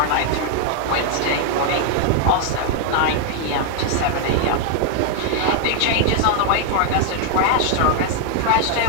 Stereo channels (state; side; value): different; both; correlation 0.00